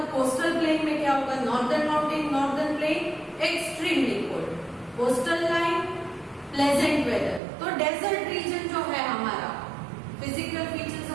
coastal plain में क्या होगा? Northern mountain, northern plain extremely cold, coastal line pleasant weather. तो डेजर्ट रीजन जो है हमारा, फिजिकल फीचर्स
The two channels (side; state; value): left; drops out; at 7.4 s